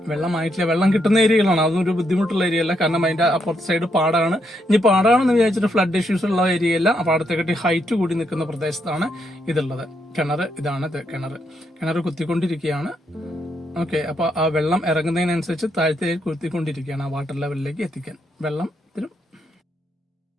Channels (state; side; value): normal; both; correlation 0.78